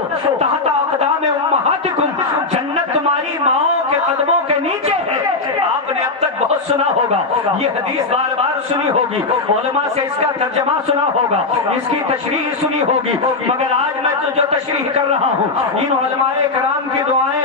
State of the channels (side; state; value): right; quieter; 3.7 dB